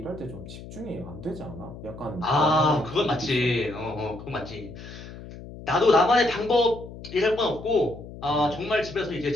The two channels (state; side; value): noise; left; hum, 14 dB below the sound